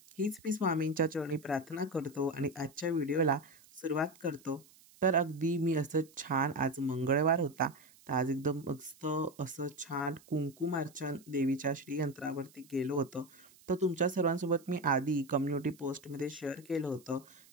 हीच मी स्वामींच्या चरणी प्रार्थना करतो आणि आजच्या व्हिडिओला सुरुवात करतो. तर अगदी मी असं छान आज मंगळवार होता, तर आज एकदम मस्त असं छान कुंकुमार्चन देवीच्या श्रीयंत्रावरती केलं होतं. तर तुमच्या सर्वांसोबत मी आधी कम्युनिटी पोस्टमध्ये शेअर केलं होतं,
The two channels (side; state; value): right; noise; hiss, 26 dB below the sound